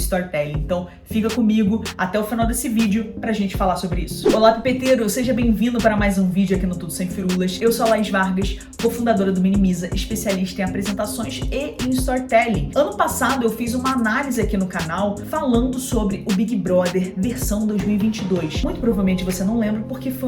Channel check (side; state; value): both; identical; correlation 1.00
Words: Então fica comigo até o final desse vídeo pra gente falar sobre isso. Olá, pipeteiro! Seja bem-vindo para mais um vídeo aqui no Tudo Sem Firulas. Eu sou a Laís Vargas, cofundadora do Minimiza, especialista em apresentações e em storytelling. Ano passado eu fiz uma análise aqui no canal falando sobre o Big Brother versão 2022. Muito provavelmente você não lembra porque